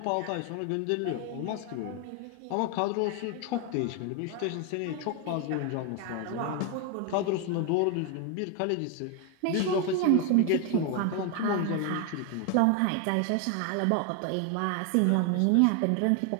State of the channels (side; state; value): both; different; correlation 0.01